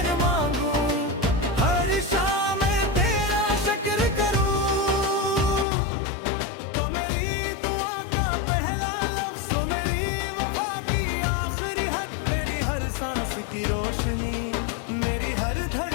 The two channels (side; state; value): right; drops out; at 5.7 s